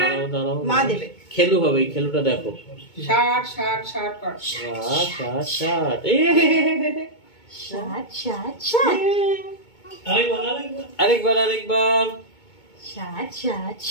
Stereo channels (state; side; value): late; right; 2.2 ms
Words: মা দেবে। খেলু হবে, এই খেলুটা দেখো। 60 60 60 কর। 60 60 60 60 60 60 আরেকবার 60 60